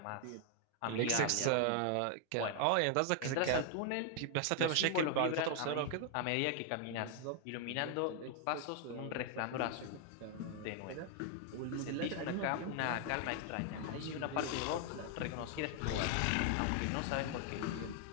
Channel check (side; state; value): both; different; correlation 0.00